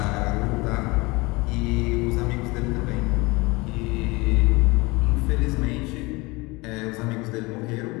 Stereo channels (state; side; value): quieter; right; 24.2 dB